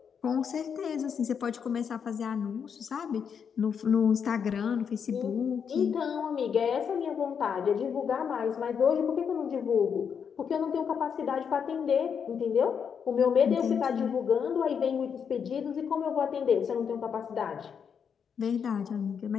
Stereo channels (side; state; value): right; quieter; 7.0 dB